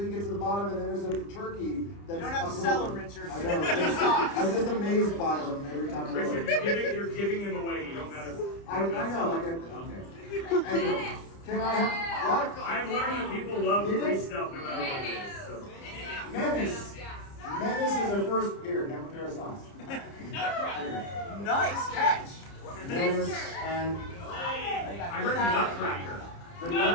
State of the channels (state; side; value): late; right; 30 ms